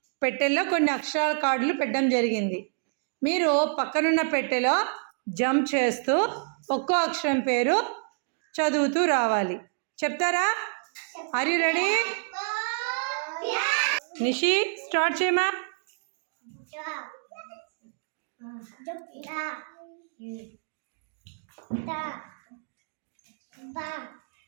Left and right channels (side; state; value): left; silent; digital silence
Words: పెట్టెల్లో కొన్ని అక్షరాల కార్డులు పెట్టడం జరిగింది. మీరు పక్కనున్న పెట్టెలో జంప్ చేస్తూ ఒక్కో అక్షరం పేరు చదువుతూ రావాలి. చెప్తారా? Are you ready? Nishi start చేయమా.